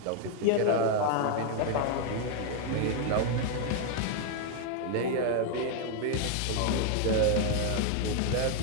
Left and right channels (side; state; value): both; different; correlation 0.00